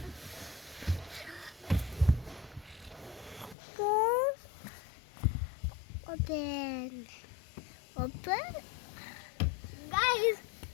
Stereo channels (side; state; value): right; drops out; at 3.6 s